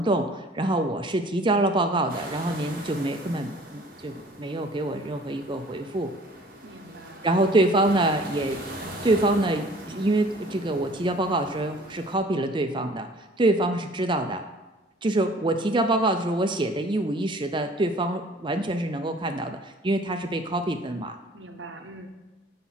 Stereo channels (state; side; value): normal; both; correlation 0.51